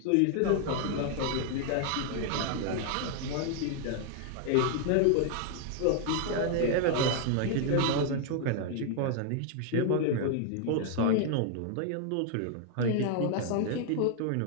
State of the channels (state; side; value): different; both; correlation 0.00